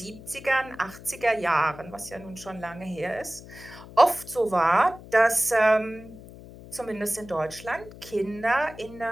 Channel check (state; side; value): noise; left; hum, 17 dB below the sound